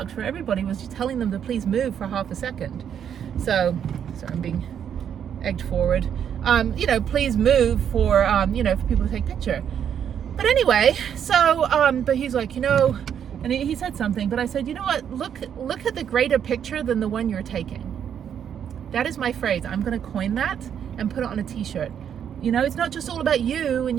for everybody. Was just telling them to please move for half a second. So I'm being egged forward. You know, please move for you know, for people to take a picture. But anyway, so, but he's like, you know, and he said something, but I said, you know what, look at the greater picture than the one you're taking. That is my phrase. I'm going to coin that and put it on a t-shirt. You know, it's not just all about you and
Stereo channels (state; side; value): quieter; left; 8.7 dB